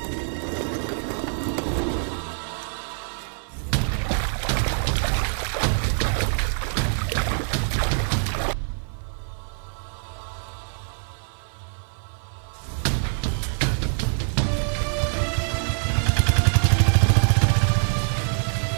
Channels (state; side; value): silent; left; 56 dB below the other